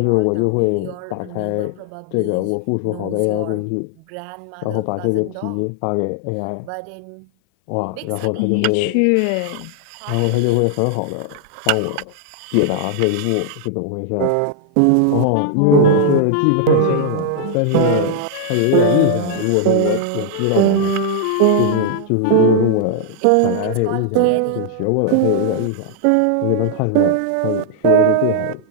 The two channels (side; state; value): both; different; correlation -0.01